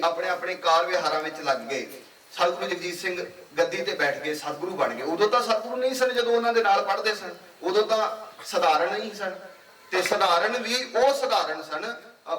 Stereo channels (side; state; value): both; identical; correlation 1.00